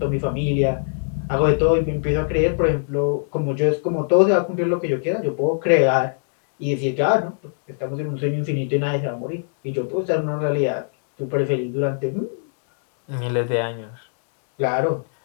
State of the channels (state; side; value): silent; right; digital silence